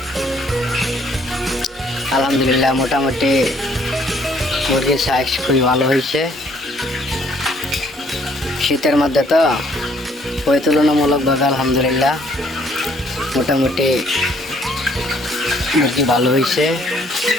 আলহামদুলিল্লাহ মোটামুটি মুরগির সাইজ খুবই ভালো হয়েছে। শীতের মধ্যে তো ওই তুলনামূলকভাবে আলহামদুলিল্লাহ মোটামুটি মুরগি ভালো হয়েছে।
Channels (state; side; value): normal; both; correlation 0.63